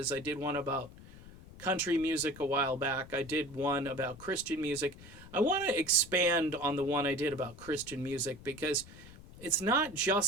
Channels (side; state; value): left; noise; rumble, 18 dB below the sound